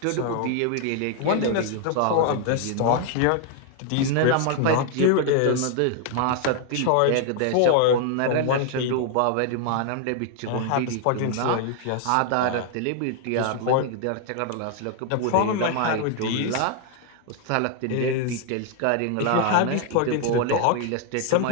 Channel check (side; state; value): both; different; correlation 0.00